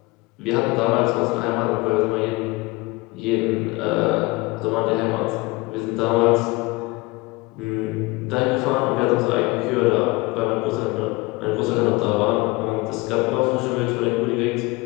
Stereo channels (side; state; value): right; quieter; 23.5 dB